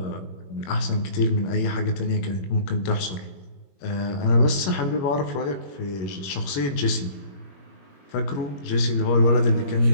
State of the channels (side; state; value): right; late; 21 ms